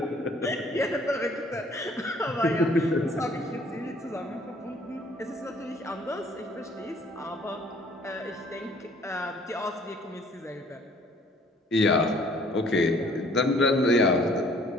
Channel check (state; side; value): normal; both; correlation 0.57